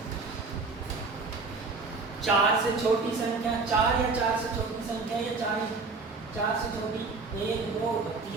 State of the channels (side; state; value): left; quieter; 4.0 dB